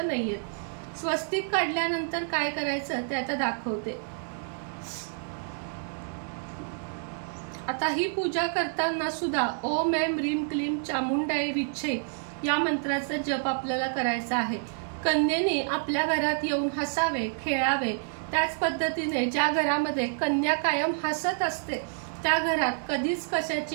नाहीयेत। स्वस्तिक काढल्यानंतर काय करायचं ते आता दाखवते। आता ही पूजा करताना सुद्धा ओम ऐं ह्रीं क्लीं चामुंडाय विच्छे या मंत्राचा जप आपल्याला करायचा आहे। कन्येने आपल्या घरात येऊन हसावे, खेळावे। त्याच पद्धतीने ज्या घरामध्ये कन्या कायम हसत असते त्या घरात कधीच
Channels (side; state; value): left; silent; digital silence